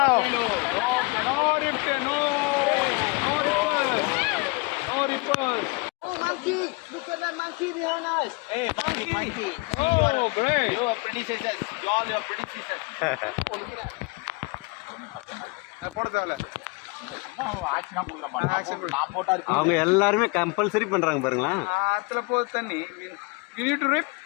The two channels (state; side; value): quieter; right; 27.7 dB